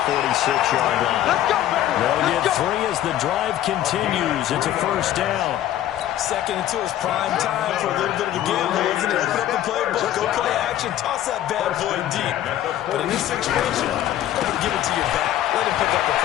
46-yard line. They'll get 3 as the drive continues. It's a first down. 2nd and 2 is prime time for a little bit of a gamble, isn't it? Open up the playbook, go play action, toss that bad boy deep. But in this situation, give it to your back. Let him pick up the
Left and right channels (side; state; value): right; quieter; 12.5 dB